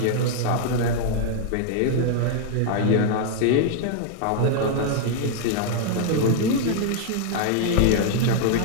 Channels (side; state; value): both; different; correlation 0.00